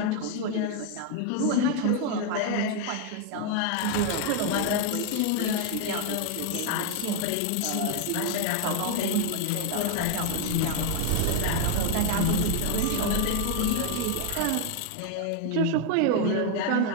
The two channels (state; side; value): different; both; correlation 0.00